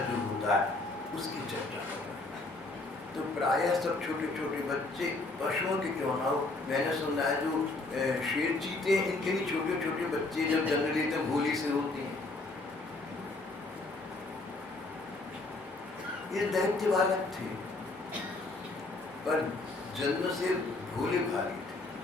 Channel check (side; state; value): right; quieter; 3.2 dB